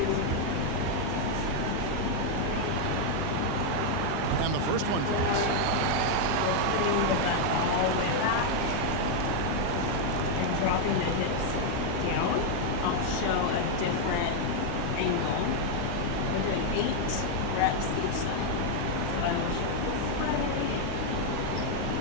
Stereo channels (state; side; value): different; both; correlation 0.01